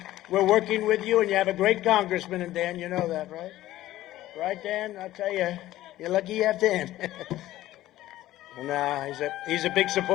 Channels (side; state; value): right; quieter; 15.0 dB